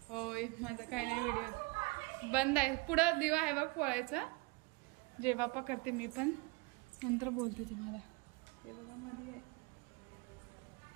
होय माझं काय नाही, व्हिडिओ बंद आहे. पुढं दिवा आहे बघ पोळायचा. जय बाप्पा करते मी पण, नंतर बोलते तुम्हाला. हे बघा मध्ये आहे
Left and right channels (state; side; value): quieter; left; 25.7 dB